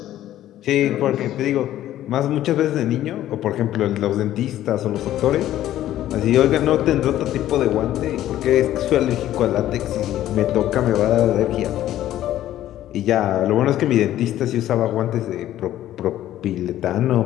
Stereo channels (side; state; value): right; quieter; 13.0 dB